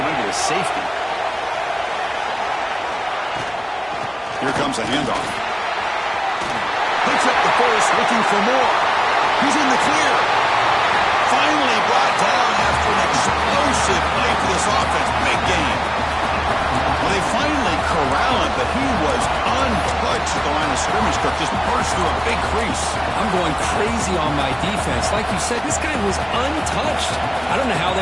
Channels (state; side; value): identical; both; correlation 1.00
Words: a safety. Here comes a handoff. Picks up the first, looking for more. He's in the clear. Finally brought down after an explosive play for this offense. Big game. Well, they finally corral him, but he was untouched at the line of scrimmage. Kirk just burst through a big crease. I'm going crazy on my defense. Like you said, this guy was untouched. I don't know how